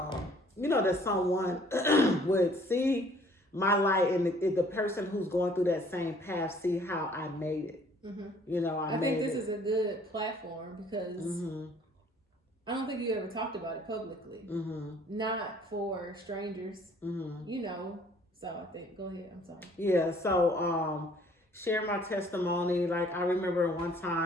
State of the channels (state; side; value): normal; both; correlation 0.57